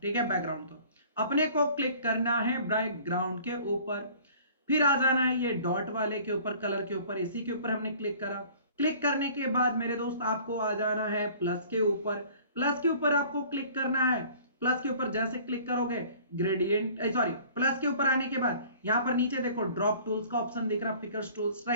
ठीक है, बैकग्राउंड तो अपने को क्लिक करना है बैकग्राउंड के ऊपर, फिर आ जाना है ये डॉट वाले के ऊपर, कलर के ऊपर, इसी के ऊपर हमने क्लिक करा। क्लिक करने के बाद मेरे दोस्त आपको आ जाना है प्लस के ऊपर, प्लस के ऊपर आपको क्लिक करना है। प्लस के ऊपर जैसे क्लिक करोगे ग्रेडियंट, सॉरी, प्लस के ऊपर आने के बाद यहाँ पर नीचे देखो ड्रॉप टूल्स का ऑप्शन दिख रहा, पिकर्स टूल्स,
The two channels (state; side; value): inverted; both; correlation -0.50